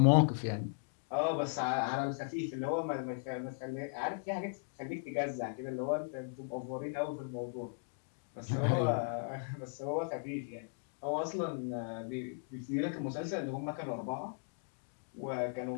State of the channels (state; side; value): silent; right; digital silence